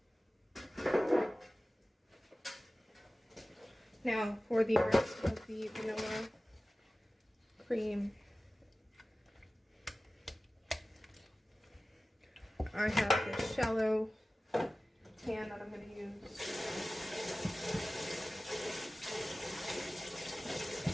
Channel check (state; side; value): normal; both; correlation 0.97